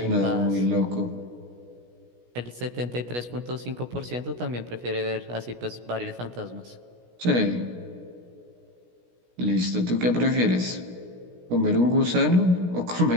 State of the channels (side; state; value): left; late; 16 ms